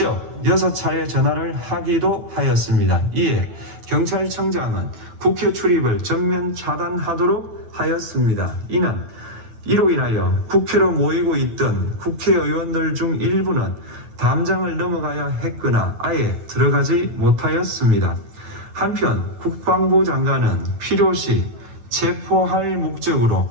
6차례 전화를 하기도 하였습니다. 이에 경찰청장은 국회 출입을 전면 차단하도록 하였습니다. 이로 인하여 국회로 모이고 있던 국회의원들 중 일부는 담장을 넘어가야 했거나 아예 들어가지 못하였습니다. 한편 국방부 장관은 필요시 체포할 목적으로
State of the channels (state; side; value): late; left; 9.2 ms